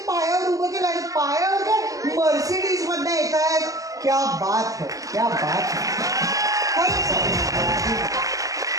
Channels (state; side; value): late; left; 0.17 ms